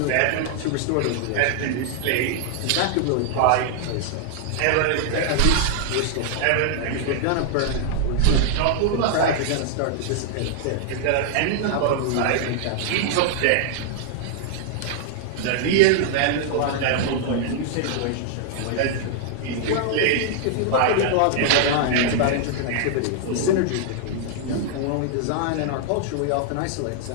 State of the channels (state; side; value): different; both; correlation 0.00